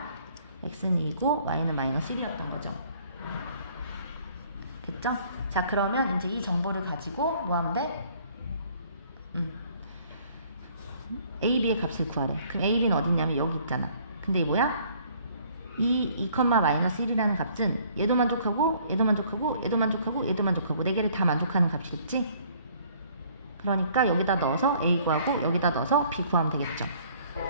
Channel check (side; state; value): both; inverted; correlation -0.59